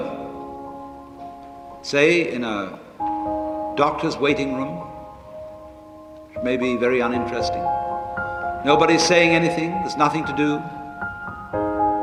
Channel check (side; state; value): both; identical; correlation 1.00